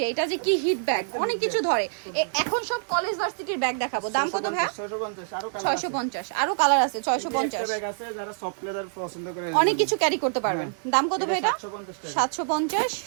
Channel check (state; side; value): silent; left; digital silence